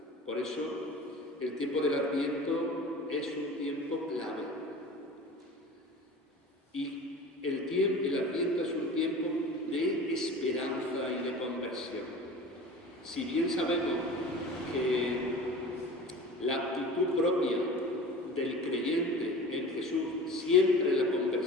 Por eso el tiempo del Adviento es un tiempo clave. Y el Adviento es un tiempo de esperanza y de conversión. Si bien sabemos que la actitud propia del creyente en Jesús siempre es la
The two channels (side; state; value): both; normal; correlation 0.38